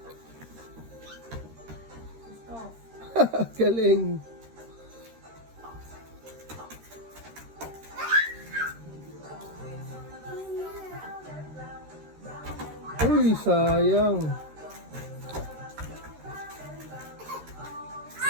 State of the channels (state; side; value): late; left; 13 ms